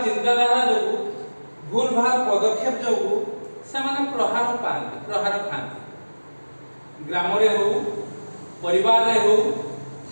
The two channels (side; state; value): both; inverted; correlation -1.00